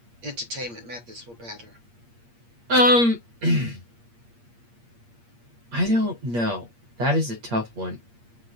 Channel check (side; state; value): left; late; 8.5 ms